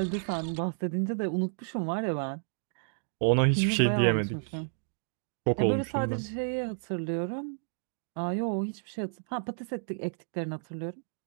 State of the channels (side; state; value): left; silent; digital silence